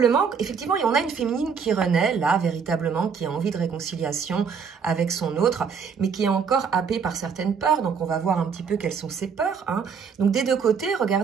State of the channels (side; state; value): left; quieter; 6.2 dB